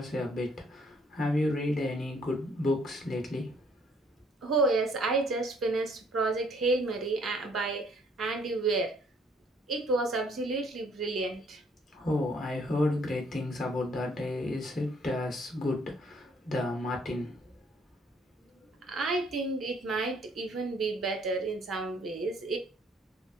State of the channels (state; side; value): normal; both; correlation 0.63